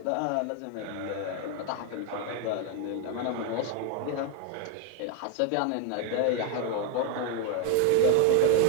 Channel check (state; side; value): different; both; correlation 0.01